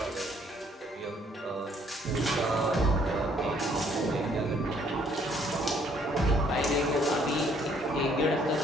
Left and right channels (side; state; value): both; normal; correlation 0.64